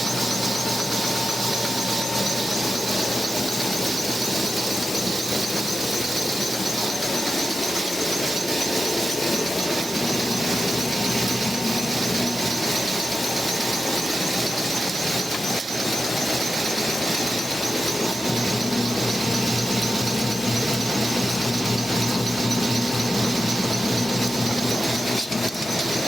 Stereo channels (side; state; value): both; normal; correlation 0.90